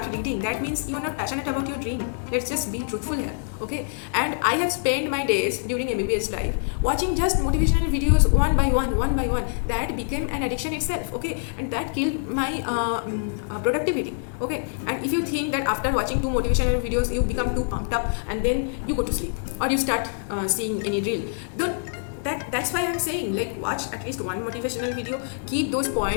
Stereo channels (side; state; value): right; silent; digital silence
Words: reading. That means you are not passionate about your dream. Let's just be truthful here, okay? And I have spent my days during MBBS life watching just motivational videos one by one. That became an addiction itself, okay? And that killed my productivity, okay? And if you think that after watching 2 motivational videos you become too pumped up and then you go to sleep or you start seeing any reel, that's why I'm saying, like, watch at least one motivational video, keep those